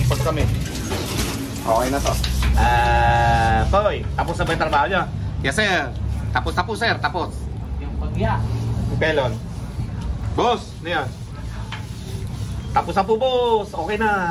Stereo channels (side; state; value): both; identical; correlation 1.00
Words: kami. Okay na to. Toy, tapos na ba yung trabaho nyo? Yes sir. Tapos sir, tapos. Yung pagya. Si Pelon. Boss, ano yan? Tapos na po boss, okay